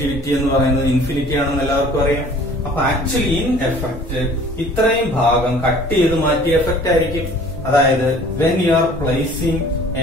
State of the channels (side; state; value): both; normal; correlation 0.50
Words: എന്ന് പറയുന്നത് ഇൻഫിനിറ്റി ആണെന്ന് എല്ലാവർക്കും അറിയാം. അപ്പൊ ആക്ച്വലി ഇൻ എഫക്ട് ഇത്രയും ഭാഗം കട്ട് ചെയ്ത് മാറ്റിയ എഫക്ട് ആയിരിക്കും. അതായത് when you are placing a